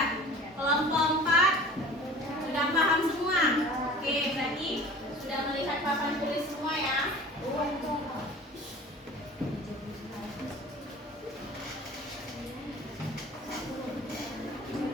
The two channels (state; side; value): normal; both; correlation 0.43